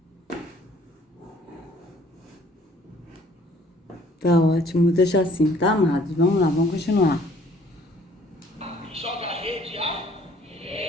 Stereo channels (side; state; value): both; normal; correlation 0.58